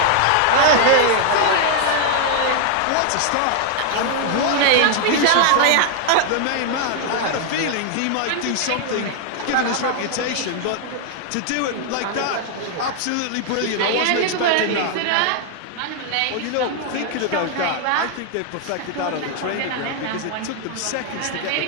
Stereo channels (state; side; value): different; both; correlation 0.00